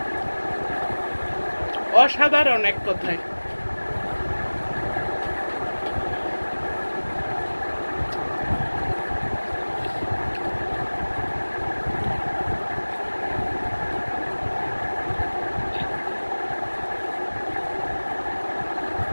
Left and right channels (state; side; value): inverted; both; correlation -1.00